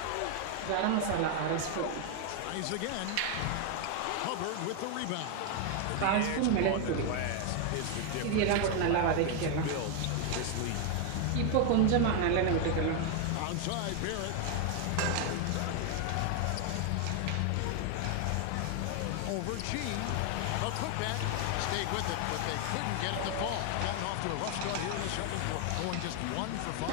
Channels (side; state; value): both; different; correlation 0.00